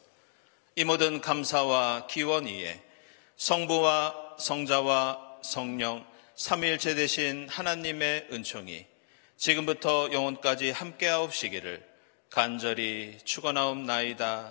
이 모든 감사와 기원 위에 성부와 성자와 성령 삼위일체 되신 하나님의 은총이 지금부터 영원까지 함께하옵시기를 간절히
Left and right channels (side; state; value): right; silent; digital silence